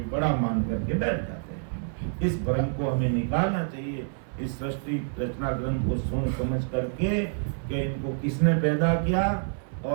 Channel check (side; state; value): left; silent; 58 dB below the other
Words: बड़ा मान करके बैठ जाते हैं। इस भ्रम को हमें निकालना चाहिए। इस सृष्टि रचना ग्रंथ को सोच समझ करके कि इनको किसने पैदा किया